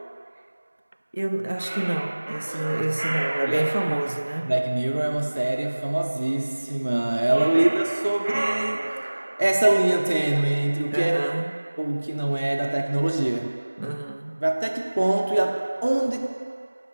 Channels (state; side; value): inverted; both; correlation -1.00